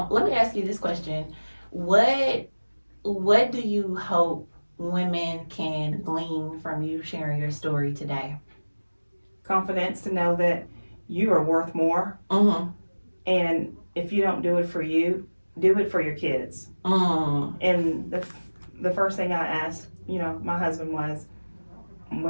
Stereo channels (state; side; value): inverted; both; correlation -1.00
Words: let me ask you this question: What do you hope women can glean from you sharing your story today? Confidence to know that you are worth more, and if you don't do it for you, do it for your kids. And the first thing I asked, my husband was,